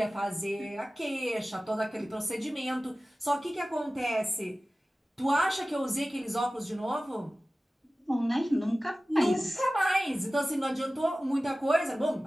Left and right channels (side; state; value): both; normal; correlation 0.96